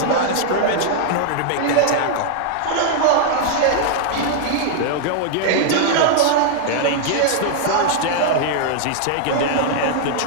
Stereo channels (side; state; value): both; different; correlation -0.01